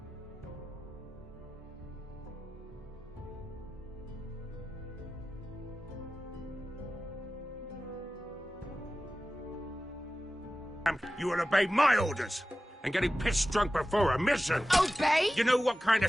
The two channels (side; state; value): both; normal; correlation 0.95